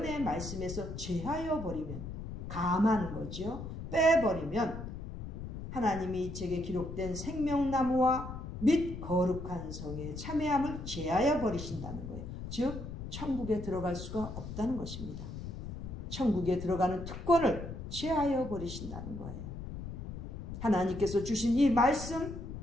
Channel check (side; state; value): left; noise; rumble, 8 dB below the sound